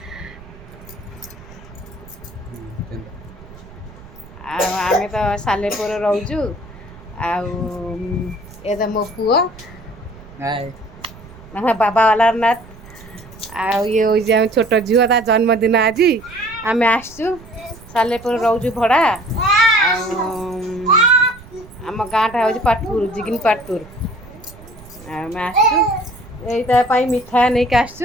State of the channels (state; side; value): noise; right; rumble, 19 dB below the sound